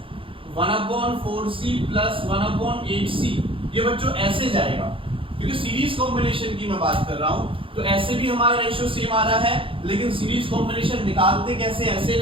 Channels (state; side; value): late; left; 0.26 ms